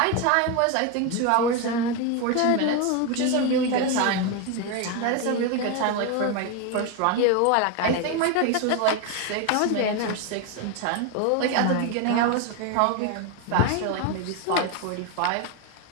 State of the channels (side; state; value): both; different; correlation 0.02